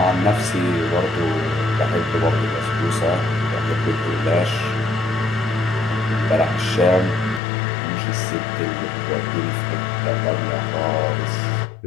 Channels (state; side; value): drops out; right; at 7.4 s